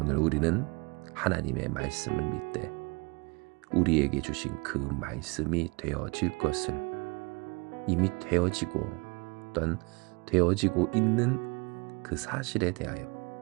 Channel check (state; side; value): quieter; left; 28.8 dB